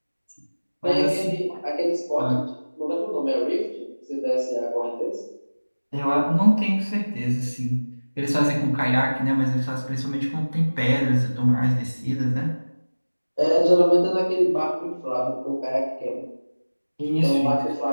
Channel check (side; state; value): both; inverted; correlation -1.00